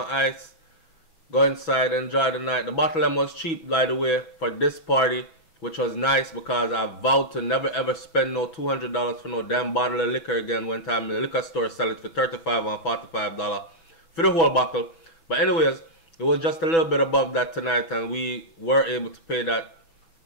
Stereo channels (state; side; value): late; right; 6.1 ms